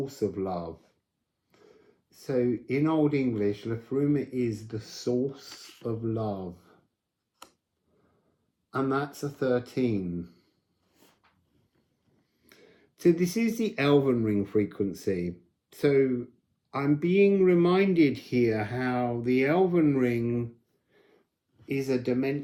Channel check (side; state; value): both; identical; correlation 1.00